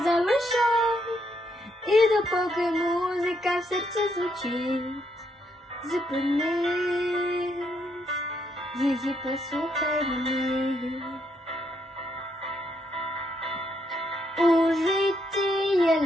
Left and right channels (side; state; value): both; normal; correlation 0.76